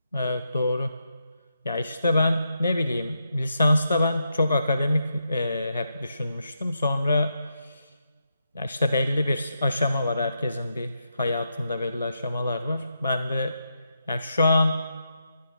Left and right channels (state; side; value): inverted; both; correlation -0.83